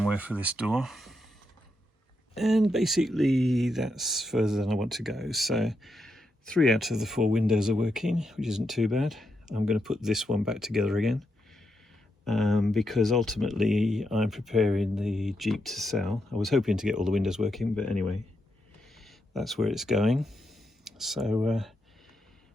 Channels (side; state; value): both; normal; correlation 0.83